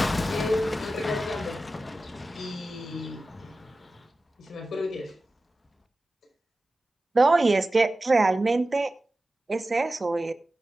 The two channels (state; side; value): normal; both; correlation 0.95